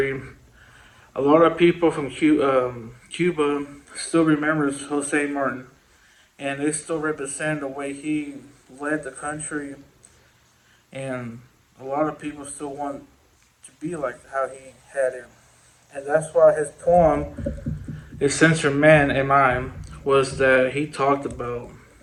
a lot of people from Cuba still remembers Jose Martin, and they still represent the way he led the country, and a lot of people still want to be like how he had it, and that's why his poem, "A Censor Man Am I," was that he talked about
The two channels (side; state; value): both; identical; correlation 1.00